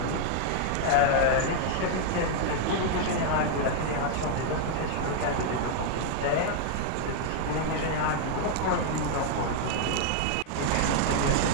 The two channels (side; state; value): both; different; correlation -0.01